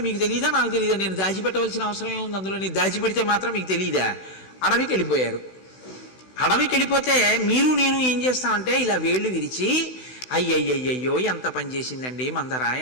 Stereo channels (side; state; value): right; late; 16 ms